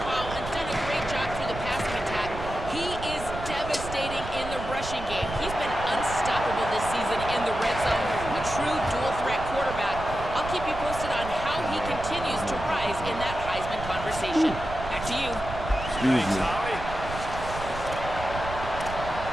ball and done a great job through the passing attack, he is devastating in the rushing game. He's been unstoppable this season in the red zone, a true dual-threat quarterback. I'll keep you posted on how he continues to rise in that Heisman conversation. Back to you. Thanks, Holly.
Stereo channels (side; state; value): right; noise; rumble, 9 dB below the sound